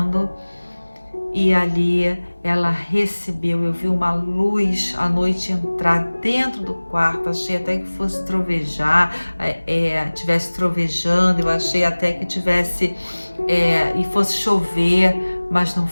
E ali ela recebeu, eu vi uma luz à noite entrar dentro do quarto, achei até que fosse trovejar, tivesse trovejando, eu achei até que tivesse, e fosse chover, mas não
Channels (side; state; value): both; inverted; correlation -1.00